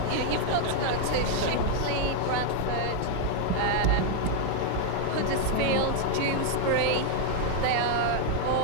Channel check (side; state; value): both; different; correlation 0.00